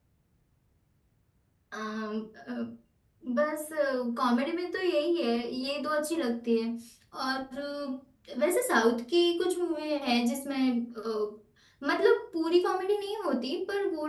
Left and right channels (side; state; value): both; identical; correlation 1.00